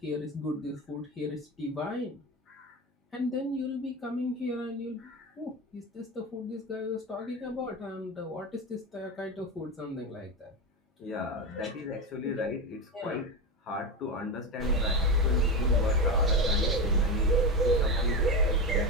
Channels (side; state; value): both; normal; correlation 0.18